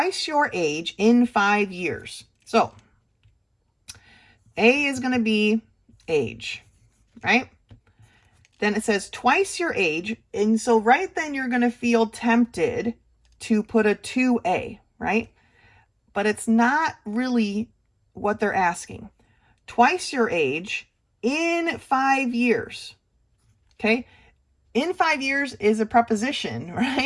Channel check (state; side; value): identical; both; correlation 1.00